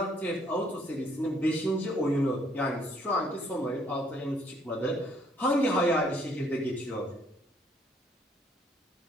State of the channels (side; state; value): both; normal; correlation 0.65